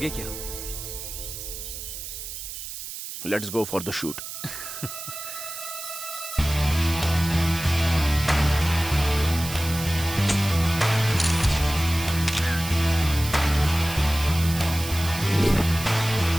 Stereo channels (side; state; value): right; noise; hiss, 9 dB below the sound